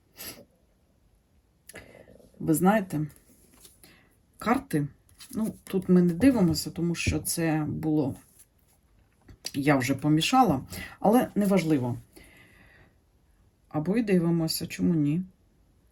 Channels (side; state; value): both; identical; correlation 1.00